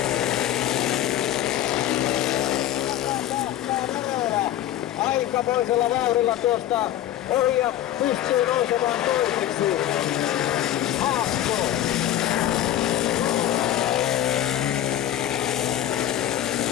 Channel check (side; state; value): right; quieter; 12.2 dB